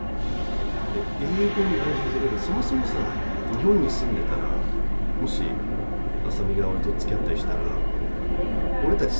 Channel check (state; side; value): inverted; both; correlation -1.00